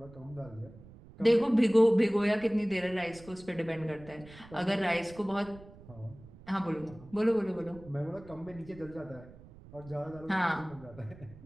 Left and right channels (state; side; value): noise; right; rumble, 20 dB below the sound